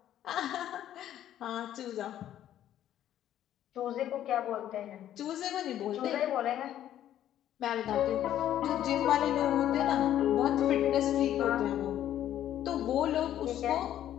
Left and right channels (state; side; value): quieter; right; 11.6 dB